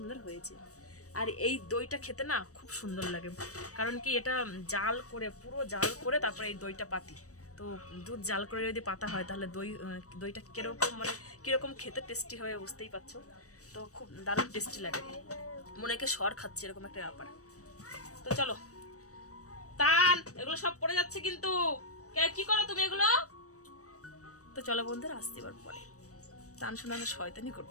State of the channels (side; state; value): right; late; 0.66 ms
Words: হয়েছে। আর এই দইটা খেতে না খুব সুন্দর লাগে, কারণ কি এটা পুরো জাল করে তারপরে এই দইটা পাতি। তো দুধ জাল করে যদি পাতা হয়, তাহলে দইটা কিরকম খেতে টেস্টি হবে বুঝতেই পারছো। তো খুব দারুণ টেস্টি লাগে, মনে হয় সর খাচ্ছে, এরকম একটা ব্যাপার। তো চলো, এগুলো সব পড়ে যাচ্ছে কিন্তু, কি করো তুমি এগুলো? তো চলো বন্ধুরা, আসতে এবার পরে। তান শোনানো শয়তানি